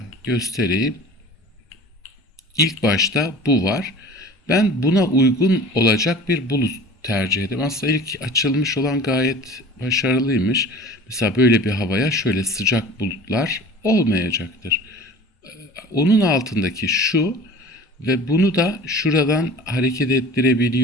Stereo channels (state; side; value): normal; both; correlation 0.42